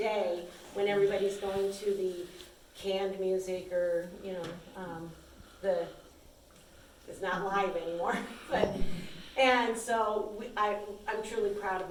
when everybody's going to the canned music or, it's not live anymore. But, and so I'm truly proud of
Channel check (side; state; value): both; identical; correlation 1.00